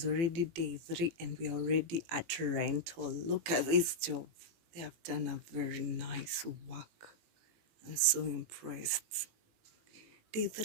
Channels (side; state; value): left; late; 18 ms